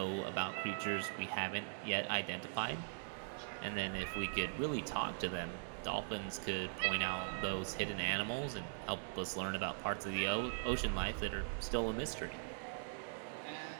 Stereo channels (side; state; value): left; silent; digital silence